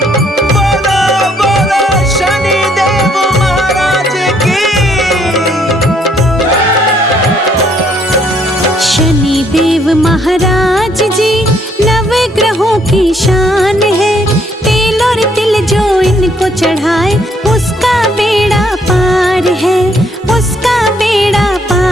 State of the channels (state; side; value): normal; both; correlation 0.68